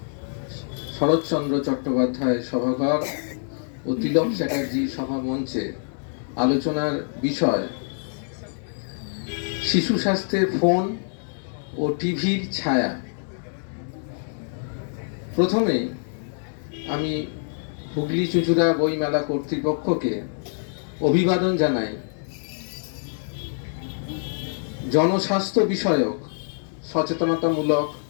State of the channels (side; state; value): right; silent; digital silence